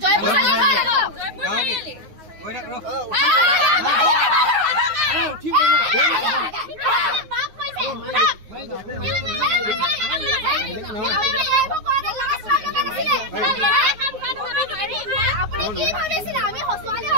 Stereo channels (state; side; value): late; left; 9.5 ms